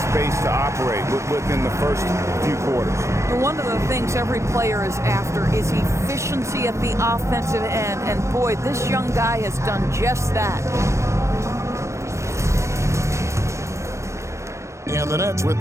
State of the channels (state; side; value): late; left; 0.14 ms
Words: space to operate within the first few quarters. One of the things every player is after is efficiency at the offensive end, and boy, this young guy has done just that. And the Nets with